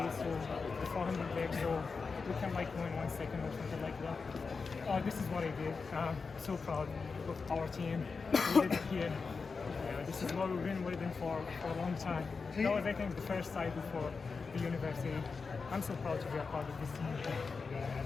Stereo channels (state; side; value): quieter; right; 4.8 dB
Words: to the 400 legs, so we can like go in 1 second or something like that. This is what I did. So proud of our team. We did it here. This is what we've been waiting for a long time. That was, I think, the first side before the university. I'm so proud to be a part of this